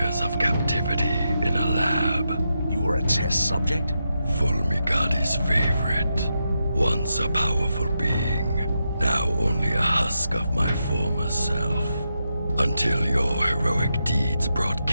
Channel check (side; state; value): both; inverted; correlation -0.86